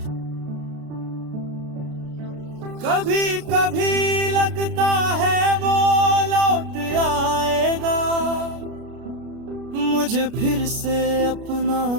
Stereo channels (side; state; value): left; late; 33 ms